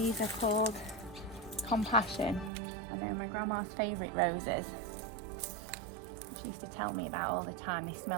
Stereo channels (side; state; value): left; drops out; at 2.5 s